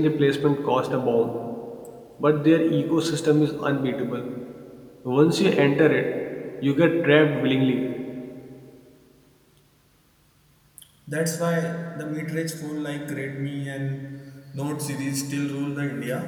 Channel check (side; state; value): both; identical; correlation 1.00